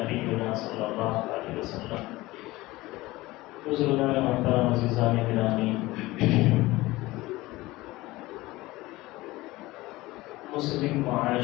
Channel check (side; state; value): right; quieter; 19.4 dB